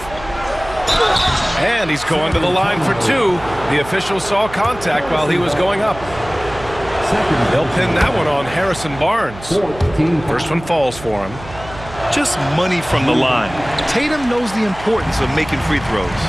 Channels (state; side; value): noise; right; hum, 15 dB below the sound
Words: And he's going to the line for two. The official saw contact while he was going up. They'll pin that one on Harrison Barnes. First one falls for him. Just money from the line. Tatum knows the importance of making free throws.